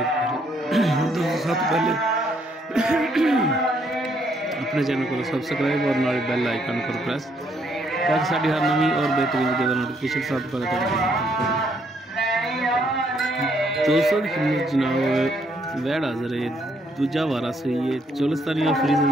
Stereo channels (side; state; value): both; normal; correlation 0.71